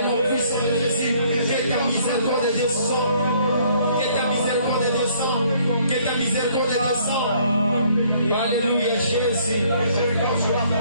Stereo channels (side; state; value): both; inverted; correlation -0.62